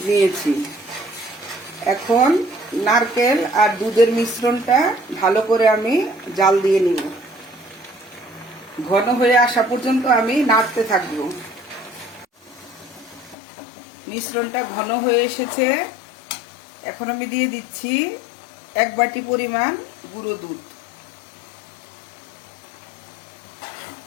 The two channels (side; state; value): right; drops out; at 13.4 s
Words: নিয়েছি। এখন নারকেল আর দুধের মিশ্রণটা ভালো করে আমি জাল দিয়ে নিব। ঘন হয়ে আসা পর্যন্ত আমি নাড়তে থাকবো। মিশ্রণটা ঘন হয়ে এসেছে। এখন আমি দিয়ে দিচ্ছি 1 বাটি পরিমাণ গুঁড়ো দুধ।